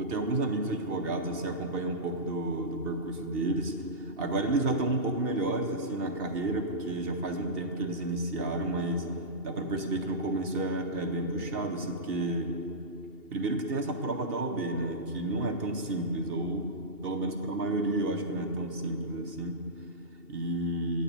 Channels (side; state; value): left; late; 2.8 ms